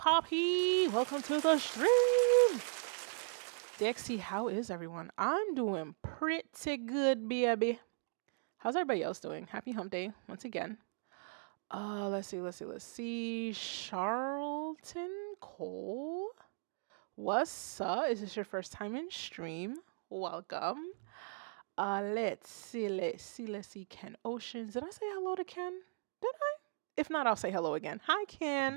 Welcome to the stream. DXT, how is everyone? I'm doing pretty good, baby. How's everybody else doing? Happy hump day once again. Let's see. Charlton Cole. What's up? Is this your first time in stream? Welcome. Let's see. Ken Oceans. Did I say hello to Ken? Did I? If not, I'll say hello again. Hi,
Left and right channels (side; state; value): left; silent; digital silence